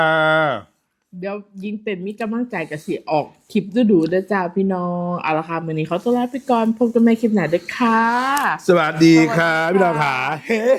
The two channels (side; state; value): both; identical; correlation 1.00